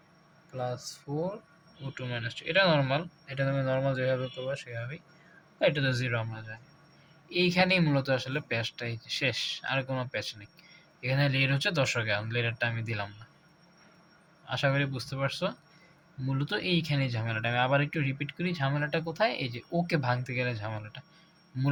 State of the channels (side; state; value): both; identical; correlation 1.00